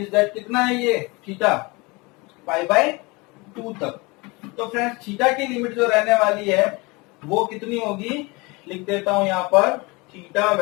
दैट कितना है ये थीटा π/2 तक। तो फ्रेंड्स थीटा की लिमिट जो रहने वाली है वो कितनी होगी, लिख देता हूं यहाँ पर, थीटा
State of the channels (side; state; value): right; quieter; 25.7 dB